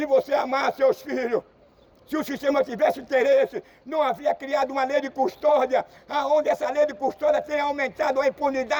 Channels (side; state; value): both; identical; correlation 1.00